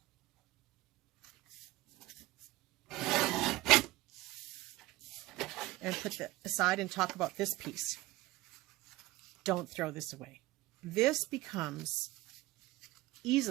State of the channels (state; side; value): quieter; left; 18.4 dB